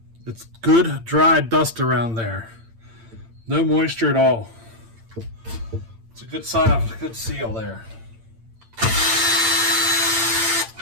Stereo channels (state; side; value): late; left; 8.8 ms